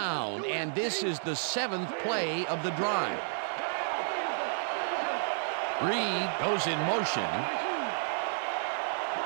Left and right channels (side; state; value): left; silent; digital silence